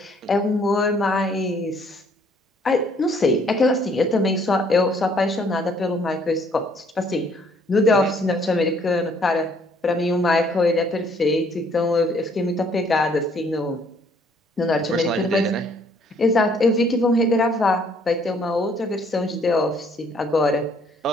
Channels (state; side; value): normal; both; correlation 0.63